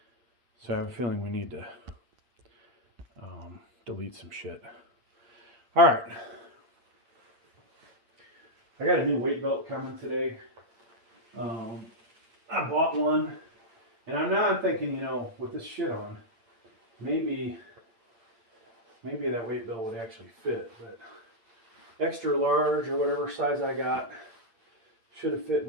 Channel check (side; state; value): left; late; 8.8 ms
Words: So I have a feeling we need to delete some shit. All right. I got a new weight belt coming today. I bought one, and I'm thinking, you know, with this shit on, maybe that weight belt would actually fit, but extra large or whatever size I got should have fit